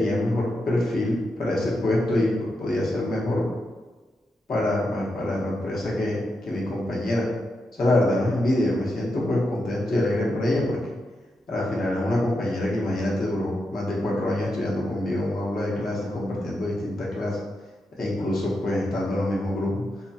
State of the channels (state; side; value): normal; both; correlation 0.86